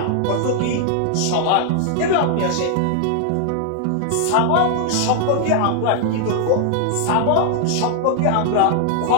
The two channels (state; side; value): different; both; correlation 0.00